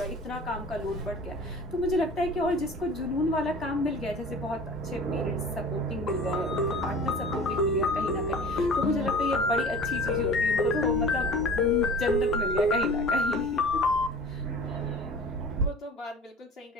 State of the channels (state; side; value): normal; both; correlation 0.41